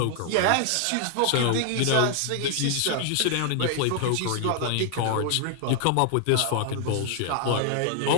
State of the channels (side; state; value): both; different; correlation 0.00